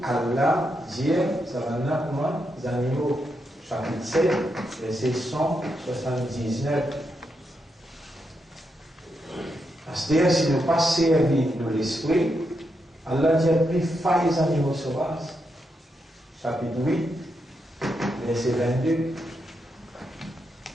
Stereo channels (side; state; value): both; normal; correlation 0.83